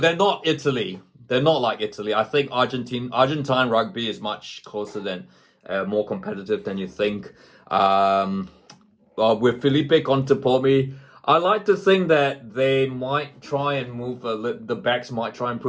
they're not Italy. They're not like Italy. I think Argentine rugby is much closer than, more competitive than you think. With Felipe Contepomi, I like to think that they might try and move, the backs might try and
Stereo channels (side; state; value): both; identical; correlation 1.00